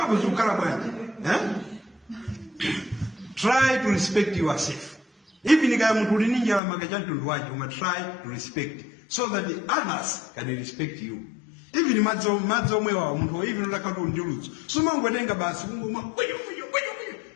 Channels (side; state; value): right; drops out; at 6.6 s